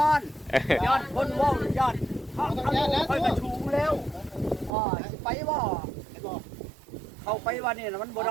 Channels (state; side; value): drops out; left; at 4.7 s